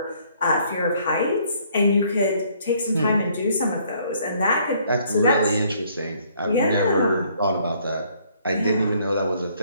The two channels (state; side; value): inverted; both; correlation -0.64